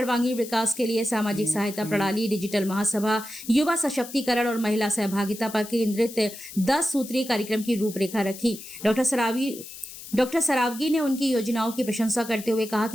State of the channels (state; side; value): noise; left; hiss, 14 dB below the sound